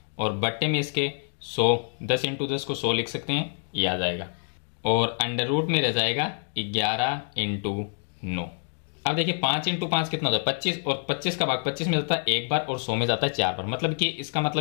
और बट्टे में इसके 100, 10 × 10 को 100 लिख सकते हैं, ये आ जाएगा। और अंडर रूट में रह जाएगा 11 × 9। अब देखिए 5 × 5 कितना होता है? 25, और 25 का भाग 25 में जाता है 1 बार और 100 में जाता है 4 बार, मतलब कि इसका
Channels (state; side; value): silent; right; digital silence